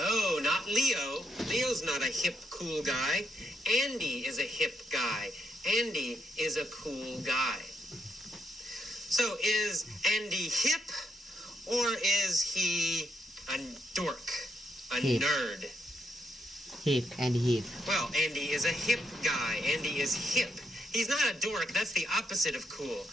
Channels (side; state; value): both; normal; correlation 0.78